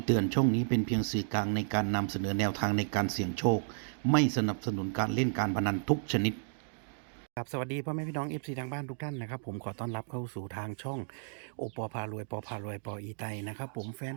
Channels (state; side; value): silent; left; digital silence